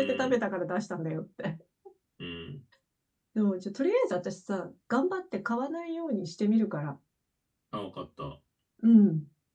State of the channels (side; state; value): both; identical; correlation 1.00